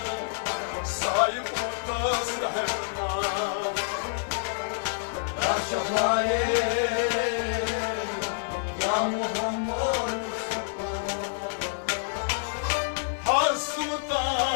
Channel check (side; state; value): right; silent; digital silence